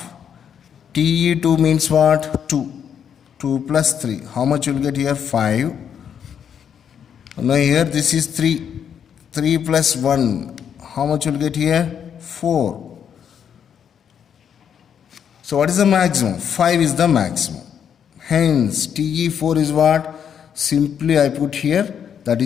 Te2 means what? 2. 2 plus 3. How much you will get here? 5. Now here this is 3. 3 plus 1. How much you will get here? 4. So what is the maximum? 5 is the maximum. Hence Te4 is what? Simply I put here, that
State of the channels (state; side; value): quieter; right; 8.2 dB